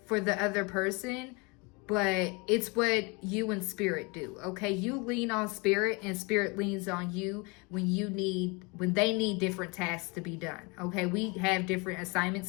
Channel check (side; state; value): right; quieter; 29.3 dB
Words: for the other person, but it's what you and spirit do. Okay, you lean on spirit and spirit leans on you when they need different tasks to be done. Okay, we have different assignments